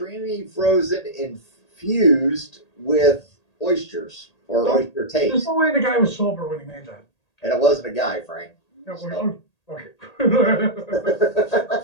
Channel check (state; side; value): late; right; 1.8 ms